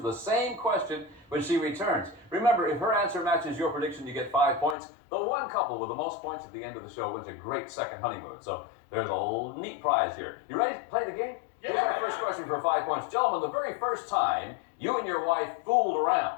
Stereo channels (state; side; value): drops out; right; at 4.8 s